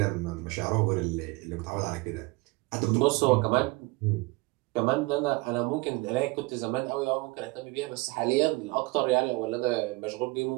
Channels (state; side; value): quieter; left; 23.8 dB